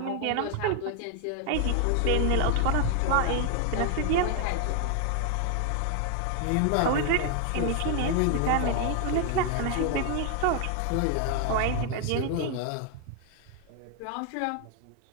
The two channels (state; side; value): different; both; correlation 0.00